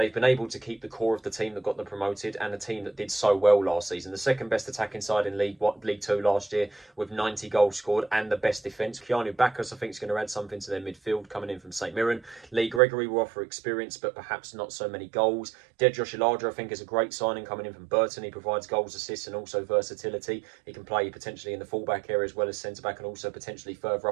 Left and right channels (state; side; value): drops out; left; at 12.8 s